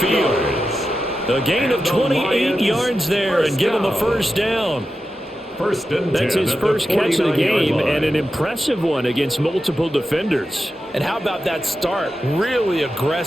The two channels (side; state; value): both; normal; correlation 0.91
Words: A gain of 28 yards there and give him a first down. That's his first catch of the game, and an impressive one against multiple defenders. And how about that start? Really